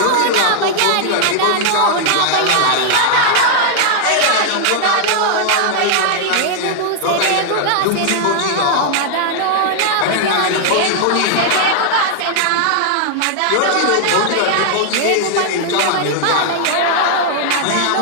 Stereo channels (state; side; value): different; both; correlation -0.01